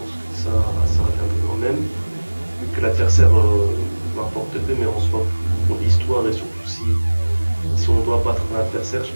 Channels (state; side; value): inverted; both; correlation -1.00